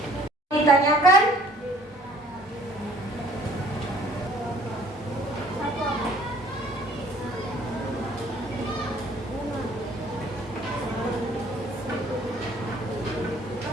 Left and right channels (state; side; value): normal; both; correlation 0.56